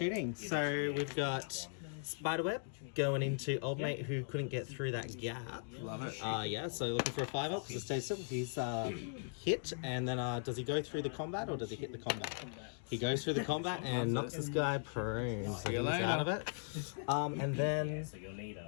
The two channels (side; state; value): right; silent; digital silence